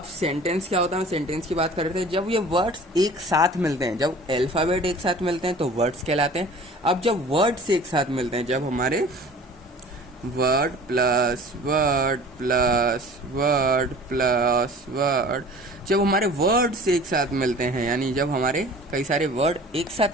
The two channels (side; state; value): both; normal; correlation 0.44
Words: सेंटेंस क्या होता है, सेंटेंस की बात कर रहे थे। जब ये वर्ड्स एक साथ मिलते हैं, जब अल्फ़ाबेट एक साथ मिलते हैं तो वर्ड्स कहलाते हैं। अब जब वर्ड्स एक साथ मिलते हैं, जब हमारे word plus word plus word plus word, जब हमारे वर्ड्स एक साथ मिलते हैं, यानी जब हमारे कई सारे वर्ड एक